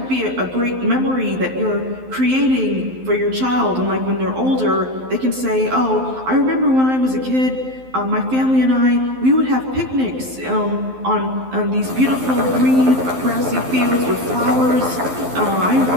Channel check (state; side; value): late; left; 12 ms